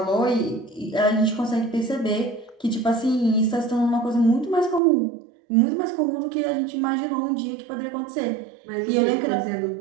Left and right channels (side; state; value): left; drops out; at 4.8 s